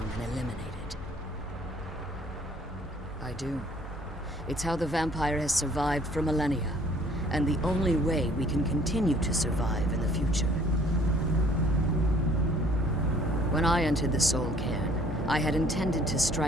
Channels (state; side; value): normal; both; correlation 0.57